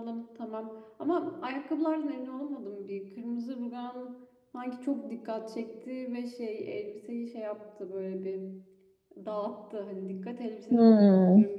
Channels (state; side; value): identical; both; correlation 1.00